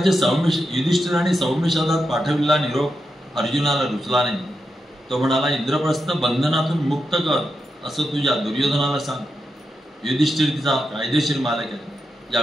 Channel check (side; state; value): both; normal; correlation 0.87